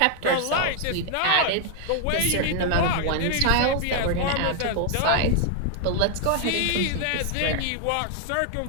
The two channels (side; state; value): both; different; correlation 0.00